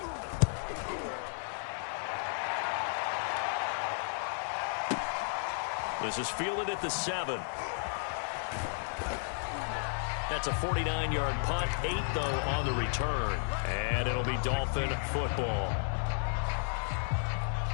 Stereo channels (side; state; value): right; silent; digital silence